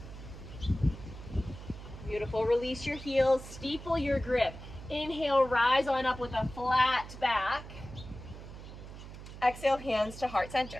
Beautiful. Release your heels, steeple your grip. Inhale, rise on up with a flat back. Exhale, hands to heart center.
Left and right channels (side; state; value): right; noise; hum, 13 dB below the sound